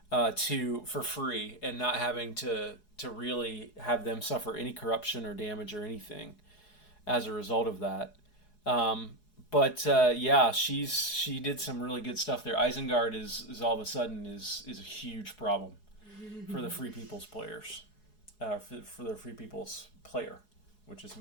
for free and not having to really have them suffer any corruption or damage or anything as a result of that. But she did some really good stuff there. Isengard is all of a sudden is a huge problem for the Free People's players, for the Free People's player, which is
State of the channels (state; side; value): late; right; 4.8 ms